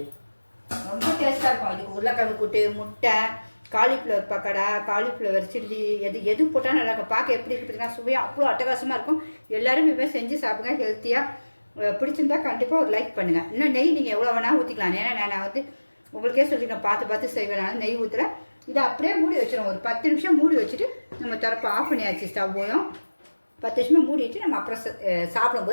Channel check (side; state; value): both; inverted; correlation -1.00